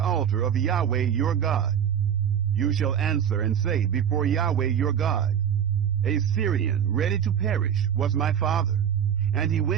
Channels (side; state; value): left; quieter; 8.7 dB